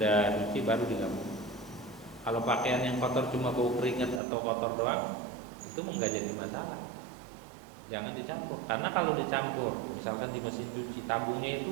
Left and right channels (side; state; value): left; drops out; at 4.2 s